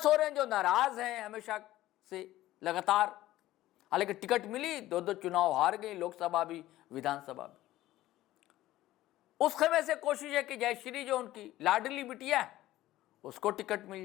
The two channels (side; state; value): right; quieter; 15.4 dB